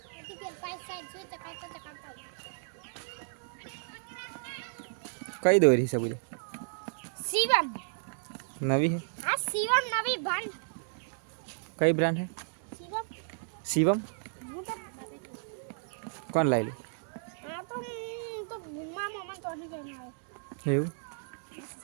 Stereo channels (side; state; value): left; silent; digital silence